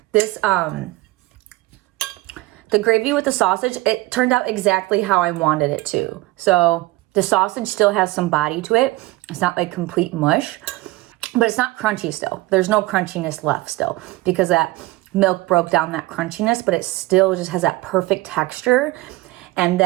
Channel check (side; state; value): left; quieter; 19.6 dB